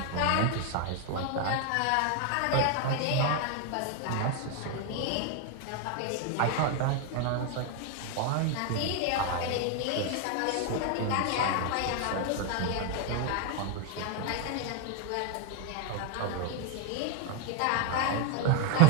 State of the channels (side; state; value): both; different; correlation 0.01